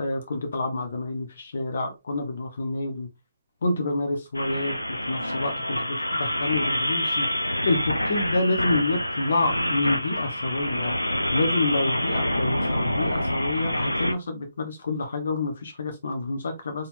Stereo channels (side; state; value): both; inverted; correlation -0.87